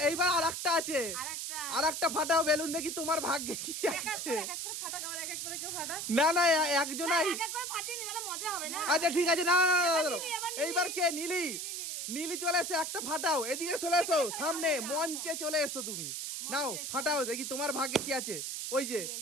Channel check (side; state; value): right; noise; hiss, 4 dB below the sound